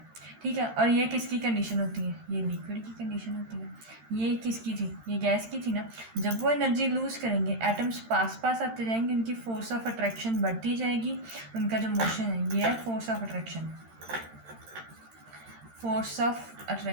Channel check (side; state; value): left; late; 13 ms